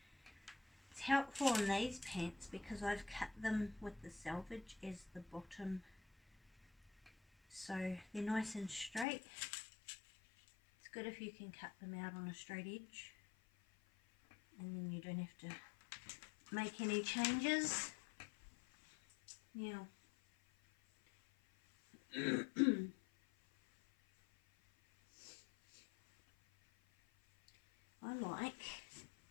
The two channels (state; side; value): drops out; right; at 9.1 s